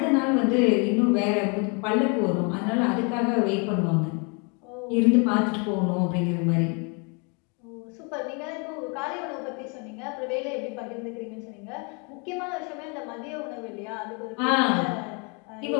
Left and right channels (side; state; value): right; quieter; 34.1 dB